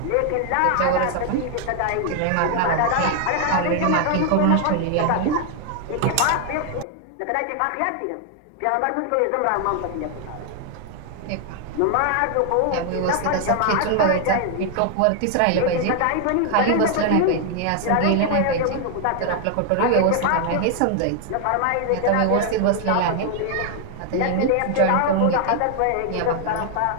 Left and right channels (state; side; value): different; both; correlation 0.00